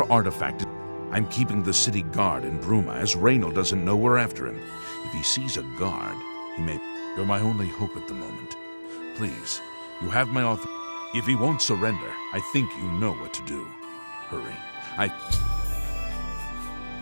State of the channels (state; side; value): inverted; both; correlation -1.00